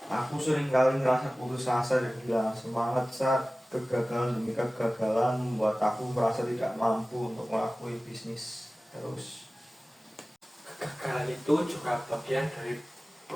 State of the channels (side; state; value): both; normal; correlation 0.97